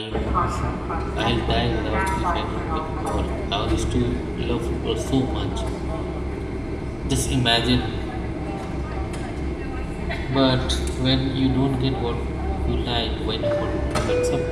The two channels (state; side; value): identical; both; correlation 1.00